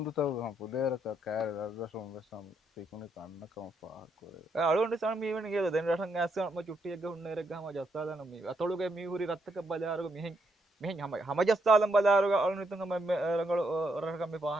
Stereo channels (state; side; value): normal; both; correlation 0.77